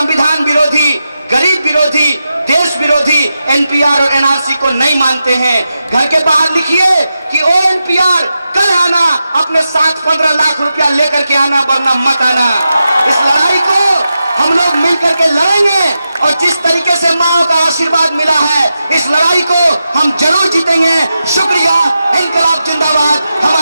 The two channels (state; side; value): inverted; both; correlation -0.89